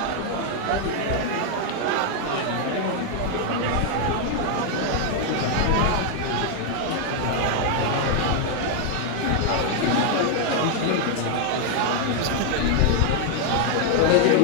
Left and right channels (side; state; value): both; different; correlation 0.00